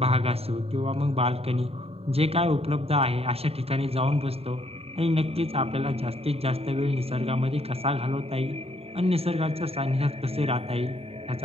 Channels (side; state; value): left; late; 0.29 ms